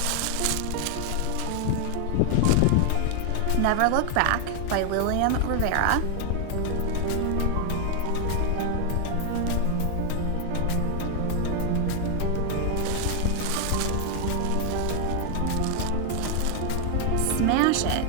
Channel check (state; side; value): different; both; correlation 0.00